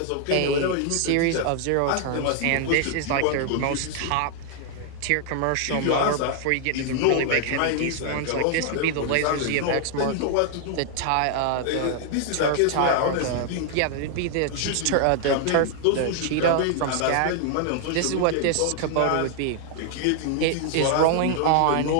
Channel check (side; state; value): both; different; correlation 0.00